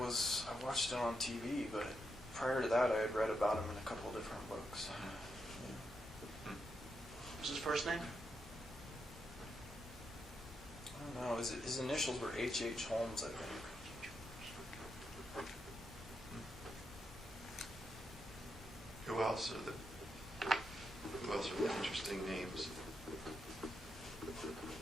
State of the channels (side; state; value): both; normal; correlation 0.83